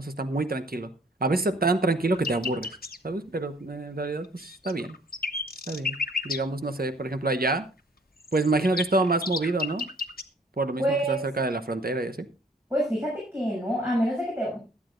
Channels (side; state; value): both; normal; correlation 0.58